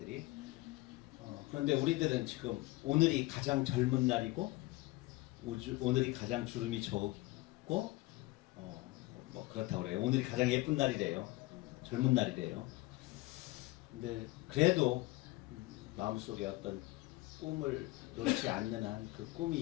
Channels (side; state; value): right; quieter; 20.4 dB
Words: 그런데 우리들은 지금 오늘이 가장 젊은 날이고 오늘이 가장 주름이 적고 뭐 그렇다고 그래요. 오늘이 가장 예쁜 날이래요. 젊은 날이래요. 근데 그래도 마음속에 어떤 꿈을 놓지 않는 한 그